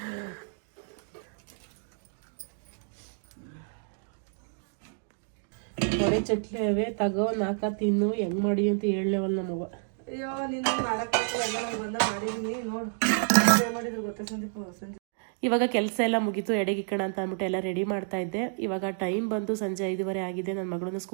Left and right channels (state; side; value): silent; left; digital silence